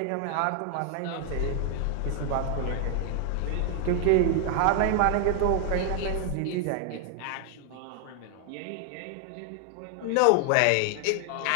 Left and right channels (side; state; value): both; different; correlation 0.00